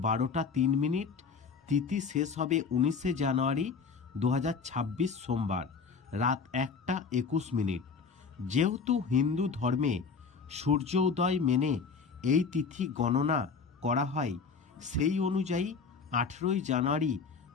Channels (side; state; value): right; quieter; 5.3 dB